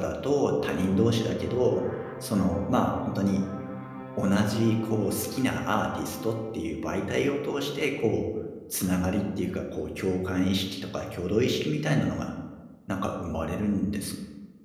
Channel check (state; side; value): identical; both; correlation 1.00